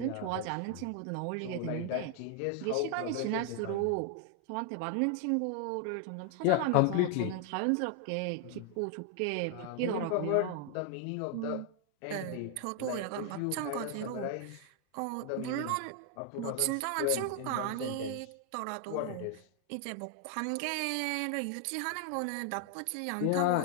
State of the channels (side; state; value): both; different; correlation 0.00